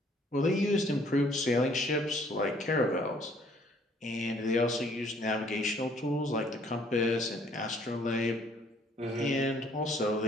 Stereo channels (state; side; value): normal; both; correlation 0.61